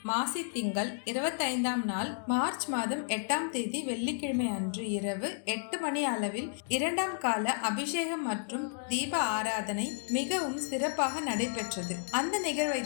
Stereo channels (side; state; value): right; silent; digital silence